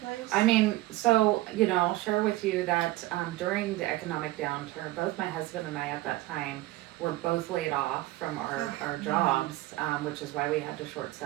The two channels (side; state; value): left; quieter; 17.8 dB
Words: I mean, so I'll share with you that during the economic downturn, both my husband and I at that time were both laid off from our jobs, which is why we had to short